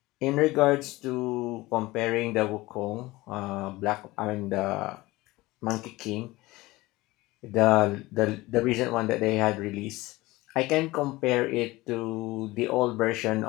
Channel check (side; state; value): right; quieter; 20.0 dB